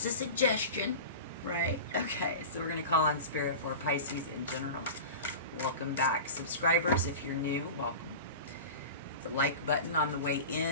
right? Okay, so we're going to call on Spirit for Pisces in general. Welcome back, subscribers. If you're new, welcome. Hit the like button on the way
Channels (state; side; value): inverted; both; correlation -0.31